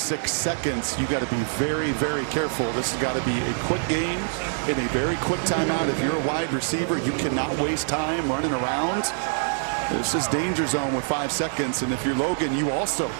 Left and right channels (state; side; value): silent; left; digital silence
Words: seconds. You got to be very, very careful. This has got to be a quick game in a very quick timeout. If you're a wide receiver, you cannot waste time running around. This is danger zone with 5 seconds, and if you're Logan, you also